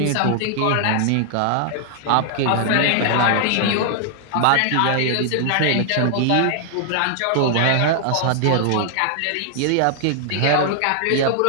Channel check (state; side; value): different; both; correlation 0.00